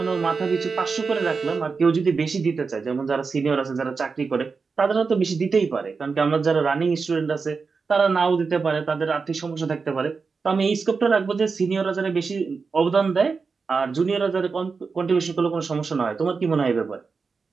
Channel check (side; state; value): left; quieter; 4.9 dB